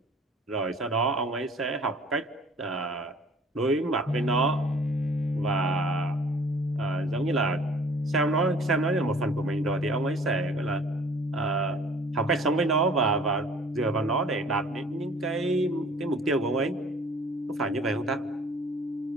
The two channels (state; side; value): normal; both; correlation 0.52